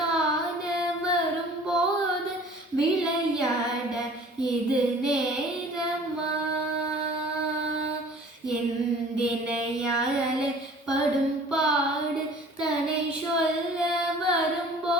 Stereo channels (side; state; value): both; normal; correlation 0.48